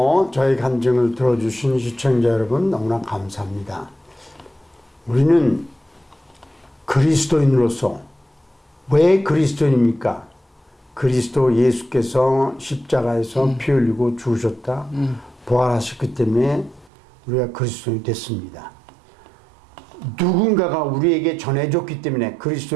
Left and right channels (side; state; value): left; drops out; at 16.9 s